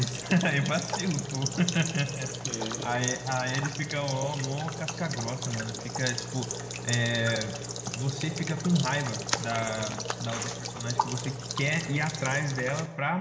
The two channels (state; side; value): identical; both; correlation 1.00